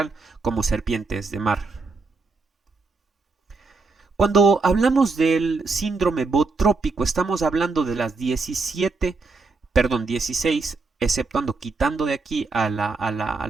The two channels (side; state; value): left; quieter; 4.0 dB